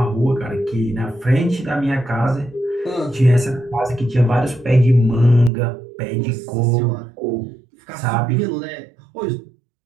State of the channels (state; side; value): drops out; left; at 5.5 s